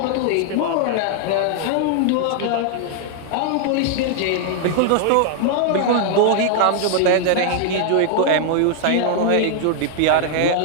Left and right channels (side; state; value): both; different; correlation -0.01